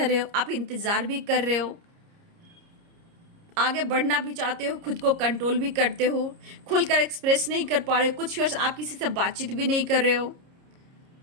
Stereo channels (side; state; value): left; late; 30 ms